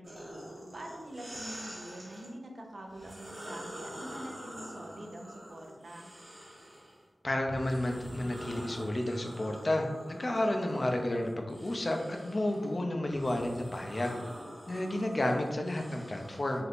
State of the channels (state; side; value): normal; both; correlation 0.97